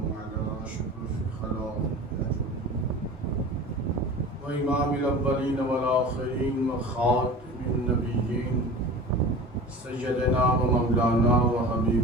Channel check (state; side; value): normal; both; correlation 0.36